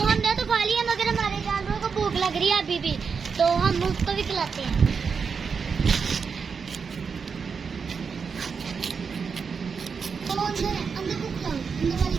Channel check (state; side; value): quieter; left; 5.7 dB